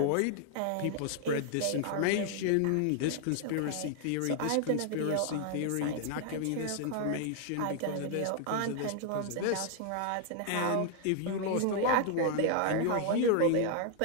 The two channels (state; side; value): different; both; correlation 0.00